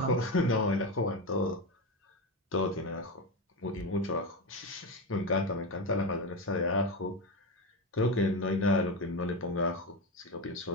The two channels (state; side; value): normal; both; correlation 0.16